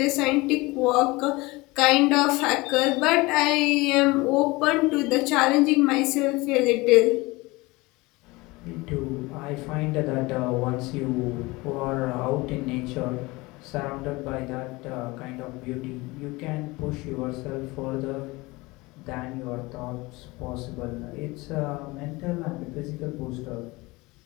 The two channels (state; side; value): quieter; right; 22.6 dB